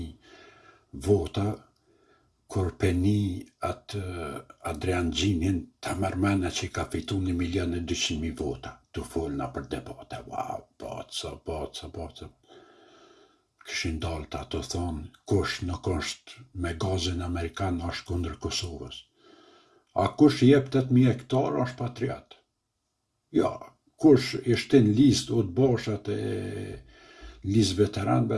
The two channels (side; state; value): both; identical; correlation 1.00